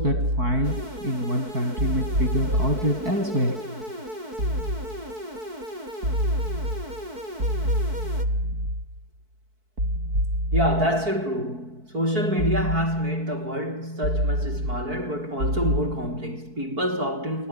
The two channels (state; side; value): late; left; 4.6 ms